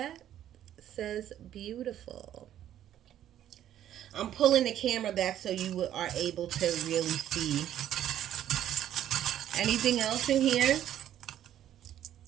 It says beautiful. I'm pulling the camera back so you are able to really see. Anything else in here?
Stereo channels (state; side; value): quieter; left; 11.3 dB